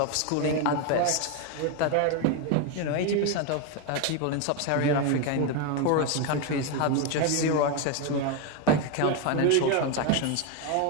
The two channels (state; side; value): different; both; correlation 0.02